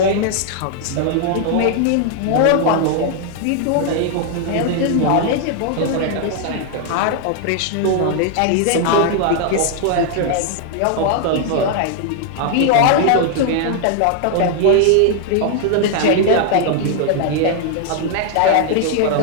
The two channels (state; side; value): different; both; correlation 0.00